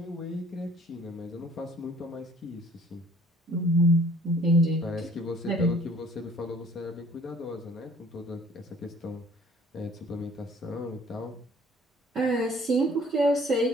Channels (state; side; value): normal; both; correlation 0.55